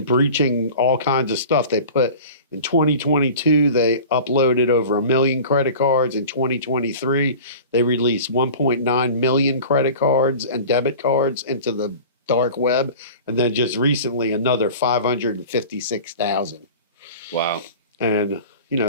breaching all kinds of stuff. They put in 2022, they uploaded over 1 million credit cards. In 2023, they released 1.9 million credit cards and debit cards into the dark web, and then just recently another 556,000. Wow. And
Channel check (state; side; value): inverted; both; correlation -0.39